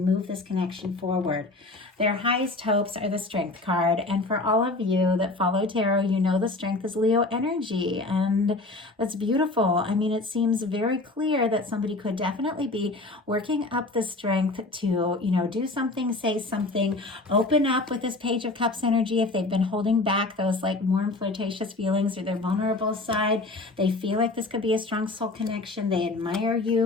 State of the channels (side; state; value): right; quieter; 3.1 dB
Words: this connection forward. Their highest hopes are the Strength card. And for all of you that follow tarot, the Strength is Leo energy. And that's beautiful. I mean, it seems very clear that somebody could definitely be working up the strength to, do something, say something, open up with this Page of Cups energy. If they've been holding back those like warm, flirtatious feelings or their vulnerable side, they feel like this could be a strong soul connection. They admire